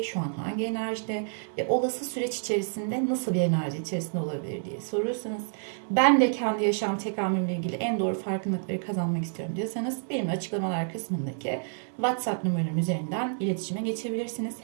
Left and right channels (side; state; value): left; silent; 59 dB below the other